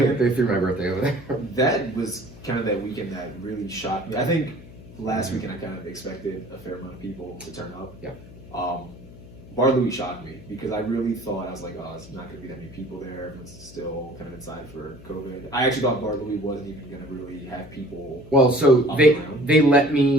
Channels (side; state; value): left; noise; hum, 18 dB below the sound